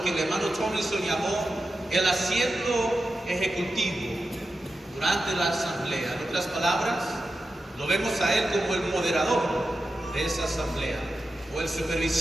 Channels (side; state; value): both; normal; correlation 0.91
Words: que el hermano Tomlinson llamó, el asiento ejecutivo durante la asamblea. En otras palabras, lo vemos a él como el moderador de esa asamblea, o el